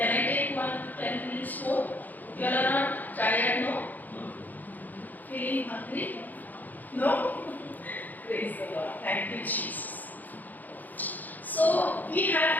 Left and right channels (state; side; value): late; right; 0.083 ms